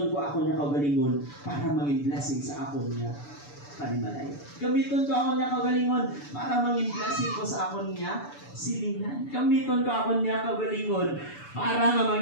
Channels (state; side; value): late; right; 6.9 ms